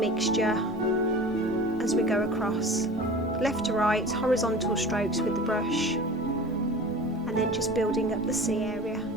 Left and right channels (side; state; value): both; normal; correlation 0.38